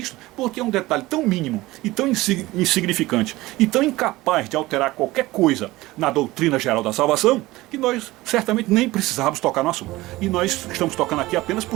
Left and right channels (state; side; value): quieter; left; 19.0 dB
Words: porque é um detalhe tão mínimo e tão insignificante e tão incapaz de alterar qualquer coisa na doutrina geral da salvação, que nós certamente nem precisávamos tocar no assunto. E nós estamos tocando aqui apenas